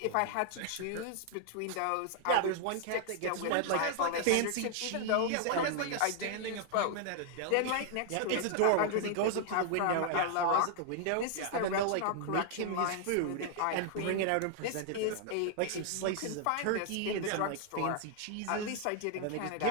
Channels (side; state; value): both; different; correlation 0.00